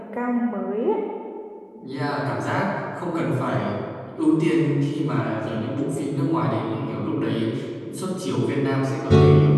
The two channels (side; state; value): both; identical; correlation 1.00